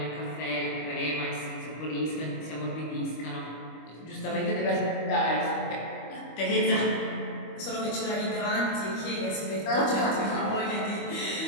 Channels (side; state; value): right; late; 25 ms